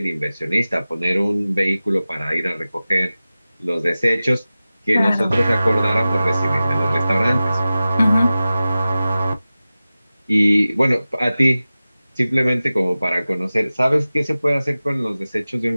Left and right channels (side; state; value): both; inverted; correlation -0.96